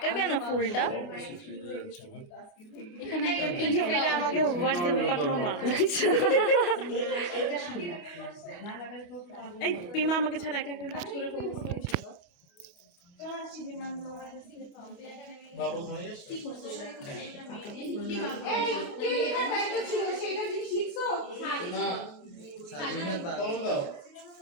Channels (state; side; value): late; right; 28 ms